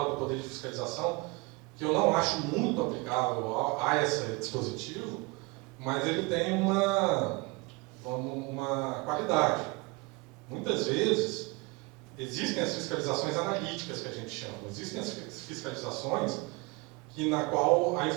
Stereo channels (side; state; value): left; quieter; 26.6 dB